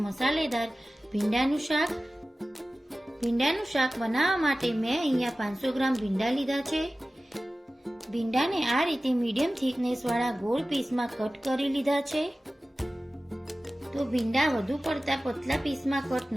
મસાલેદાર ભીંડાનું શાક. ભીંડાનું શાક બનાવવા માટે મેં અહીંયા 500 ગ્રામ ભીંડા લીધા છે. ભીંડાને આ રીતે મીડિયમ થિકનેસ વાળા ગોળ પીસમાં કટ કરી લીધા છે. તો ભીંડા વધુ પડતા પતલા પીસમાં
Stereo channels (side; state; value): both; normal; correlation 0.96